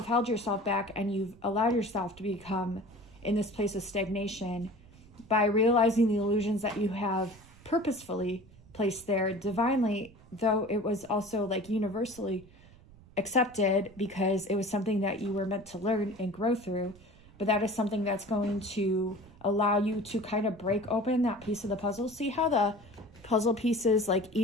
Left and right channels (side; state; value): right; noise; rumble, 23 dB below the sound